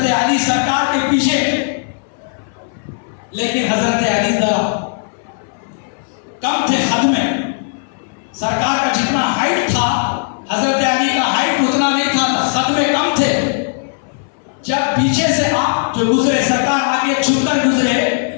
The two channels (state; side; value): silent; right; 62 dB below the other